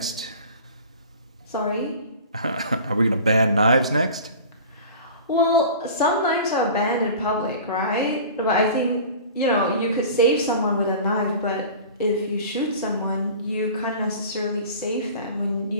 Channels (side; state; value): both; inverted; correlation -0.40